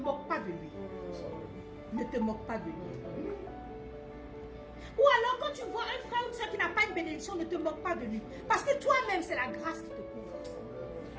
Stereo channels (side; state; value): both; identical; correlation 1.00